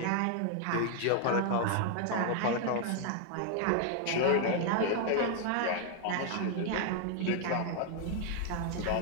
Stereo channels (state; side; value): different; both; correlation 0.00